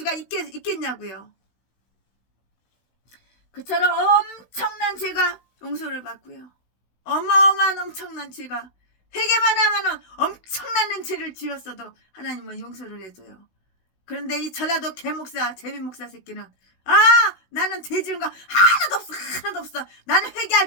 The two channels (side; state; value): right; late; 16 ms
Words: 있겠냐고요. 그처럼 엄청난 죄가 용서를 받고요. 어마어마한 엄청난 죄가, 회개만 하면은 엄청난 죄를 지었어도 하나님은 용서를 해줘요. 그런데 이 전라도 개목사 제비목사 새끼는 나는 죄 지은 거 하나도 없어. 나는